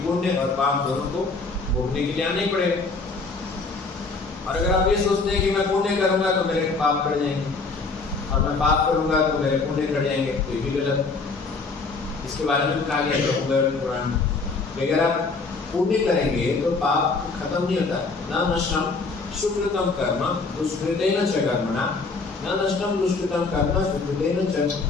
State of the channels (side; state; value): right; quieter; 4.1 dB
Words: पुण्य और पाप दोनों को भोगने के लिए आना ही पड़ेगा। और अगर आप ये सोचते हैं कि मैं पुण्य करूंगा तो मेरे पाप बढ़ जाएंगे, और मैं पाप करूंगा तो मेरे पुण्य बढ़ जाएंगे, तो ये भी गलत। इसके बारे में कहा गया है पुराण में, अगर आप पुण्य करेंगे तो पाप खत्म नहीं होता। न नष्टम सुकृतम कर्म दुष्कृतेन च कर्मणा, न नष्टम दुष्कृतम कर्म सुकृतेन च